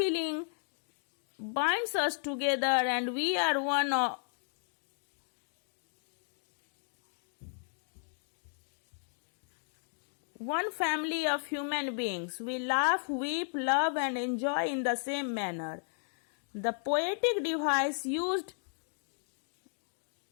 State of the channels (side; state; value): right; silent; digital silence